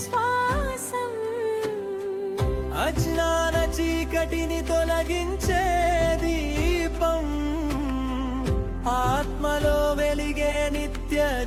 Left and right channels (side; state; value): both; identical; correlation 1.00